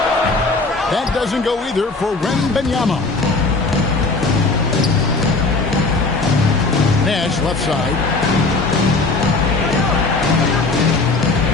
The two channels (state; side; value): quieter; right; 3.6 dB